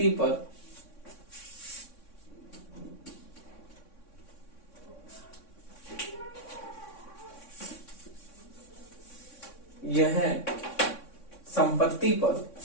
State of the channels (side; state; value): right; late; 3.6 ms